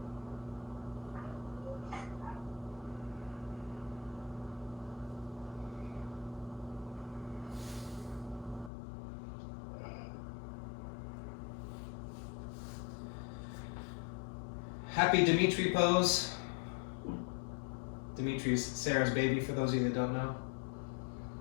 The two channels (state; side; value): drops out; right; at 8.7 s